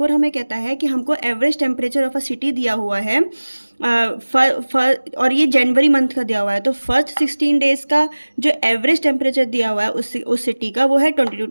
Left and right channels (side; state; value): both; inverted; correlation -1.00